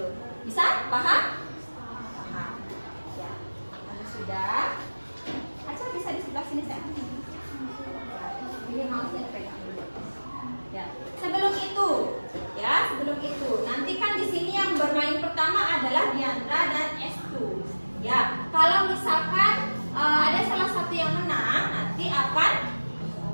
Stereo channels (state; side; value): inverted; both; correlation -1.00